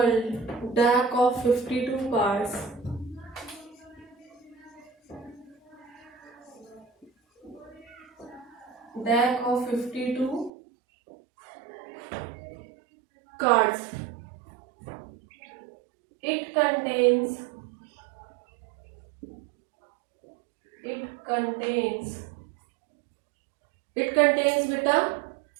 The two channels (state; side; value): drops out; left; at 10.5 s